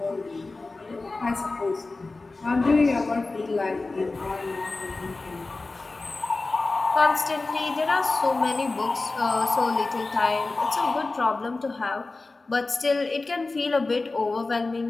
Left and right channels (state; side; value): quieter; right; 3.4 dB